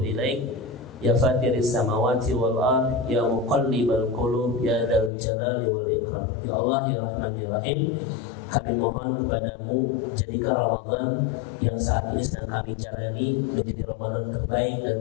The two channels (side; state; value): right; drops out; at 5.1 s